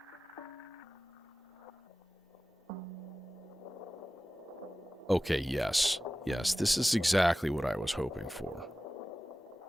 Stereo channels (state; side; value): normal; both; correlation 0.96